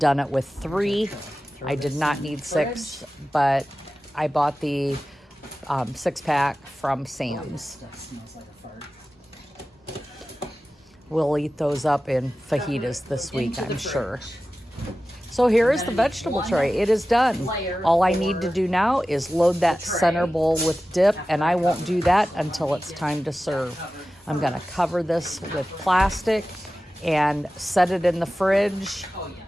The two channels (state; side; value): normal; both; correlation 0.95